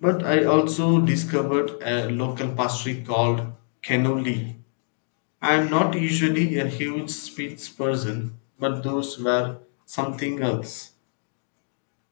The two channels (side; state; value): right; silent; 62 dB below the other